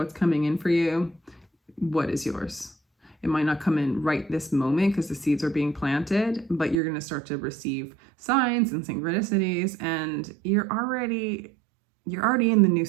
coming in for you? What is yours? It might not come in right this moment because the seeds are being planted, but you're going to start to receive signs and synchronicities, and you're already in the new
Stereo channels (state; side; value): drops out; left; at 6.8 s